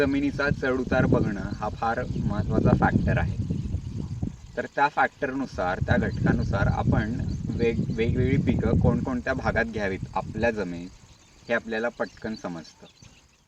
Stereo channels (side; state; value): both; identical; correlation 1.00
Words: चढउतार बघणं हा फार महत्त्वाचा फॅक्टर आहे. तर त्या फॅक्टरनुसार, त्या घटकानुसार आपण वेगवेगळी पिकं कोणकोणत्या भागात घ्यावीत आपल्या जमिनीत हे आपल्याला पटकन समजतं.